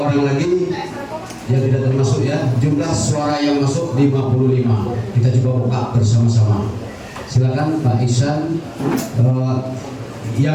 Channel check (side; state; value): both; identical; correlation 1.00